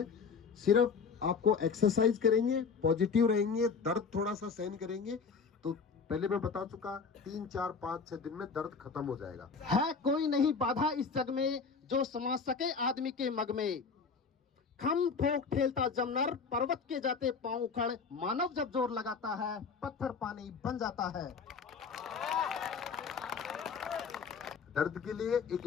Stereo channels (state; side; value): quieter; right; 5.4 dB